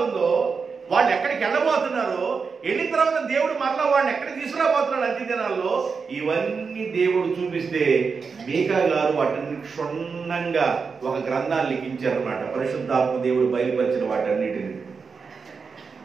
వాళ్ళు ఎక్కడికి వెళ్ళబోతున్నారో, వెళ్ళిన తర్వాత దేవుడు మరలా వాళ్ళని ఎక్కడికి తీసుకురాబోతున్నాడు అంత్య దినాల్లో, ఇవన్నీ దేవుడు చూపిస్తే మీకా గారు వాటిని క్షుణ్ణంగా ఒక గ్రంథాన్ని లిఖించారన్నమాట. పరిశుద్ధాత్మ దేవుడు బయలుపరిచిన వాటన్నిటిని.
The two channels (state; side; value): quieter; left; 5.2 dB